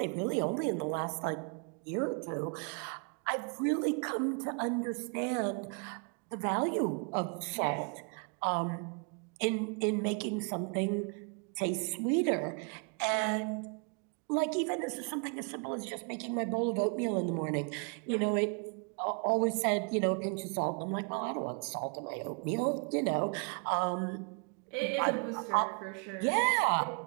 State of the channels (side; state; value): left; quieter; 37.1 dB